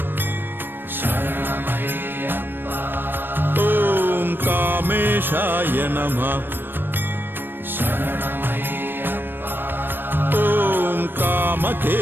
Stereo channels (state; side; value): late; left; 0.096 ms